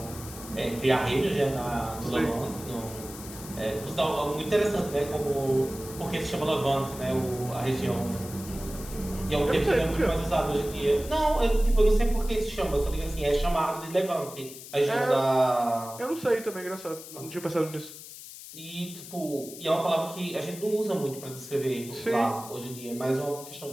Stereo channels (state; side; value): noise; left; hiss, 14 dB below the sound